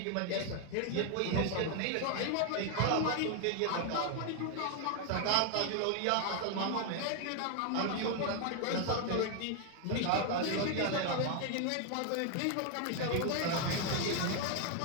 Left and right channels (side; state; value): both; different; correlation 0.00